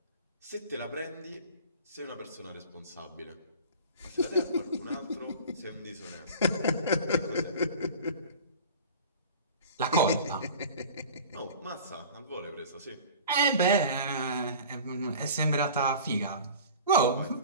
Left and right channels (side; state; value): both; inverted; correlation -0.40